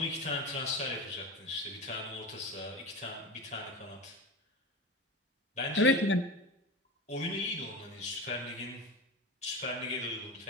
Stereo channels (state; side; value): normal; both; correlation 0.25